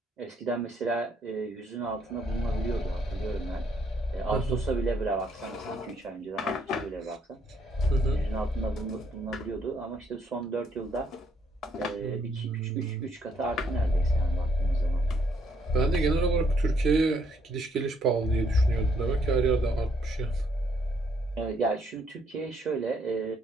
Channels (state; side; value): normal; both; correlation 0.70